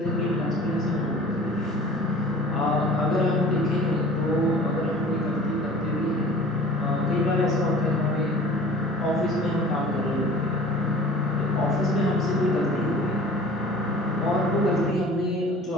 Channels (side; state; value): both; normal; correlation 0.45